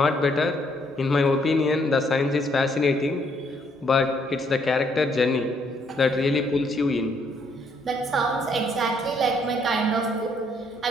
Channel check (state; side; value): normal; both; correlation 0.69